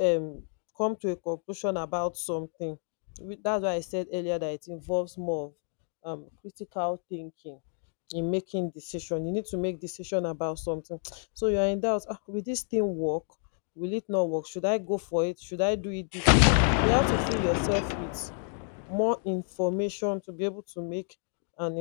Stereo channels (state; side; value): silent; right; 58 dB below the other